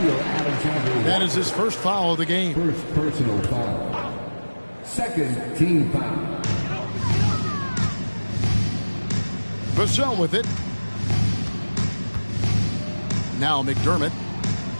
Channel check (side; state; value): both; inverted; correlation -1.00